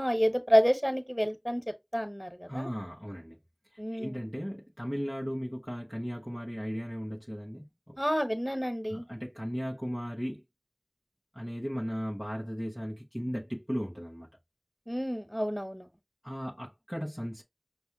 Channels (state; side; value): identical; both; correlation 1.00